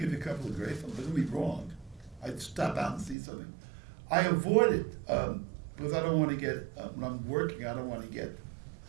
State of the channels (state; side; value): drops out; left; at 3.2 s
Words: you a couple of great films, but it'll be wrong. I'd stop out and see something. I avoid it because I don't want to get, when I'm working, I don't want to get